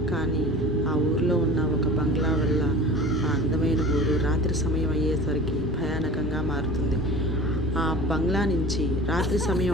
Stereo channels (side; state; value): both; normal; correlation 0.39